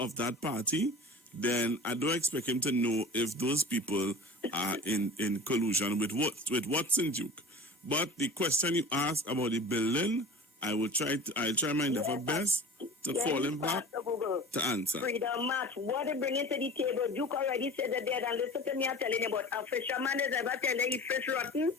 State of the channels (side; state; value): both; normal; correlation 0.37